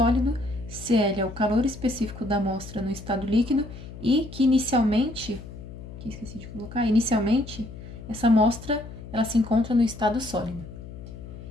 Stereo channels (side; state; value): left; noise; hum, 13 dB below the sound